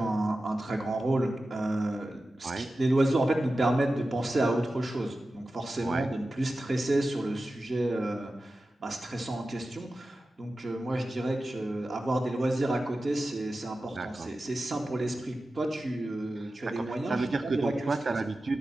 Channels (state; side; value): normal; both; correlation 0.94